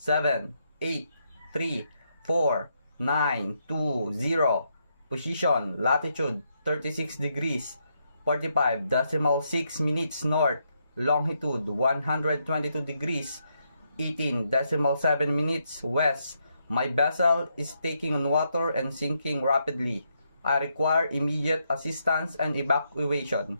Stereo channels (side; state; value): both; inverted; correlation -0.79